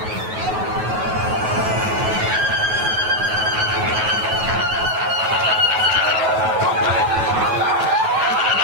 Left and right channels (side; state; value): left; late; 9.3 ms